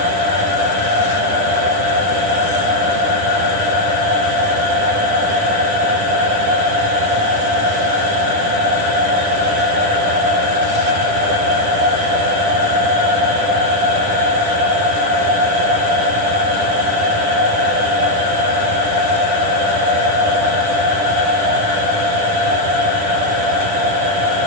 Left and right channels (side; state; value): left; late; 10 ms